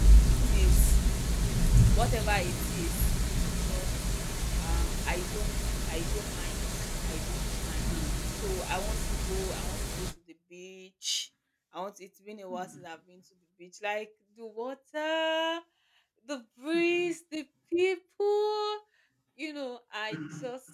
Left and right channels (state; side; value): identical; both; correlation 1.00